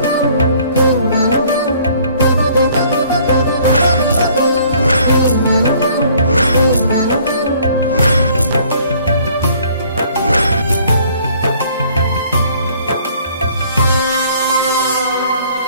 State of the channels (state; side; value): inverted; both; correlation -0.59